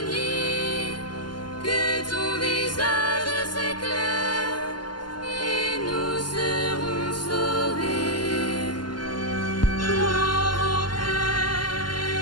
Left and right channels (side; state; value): right; late; 0.71 ms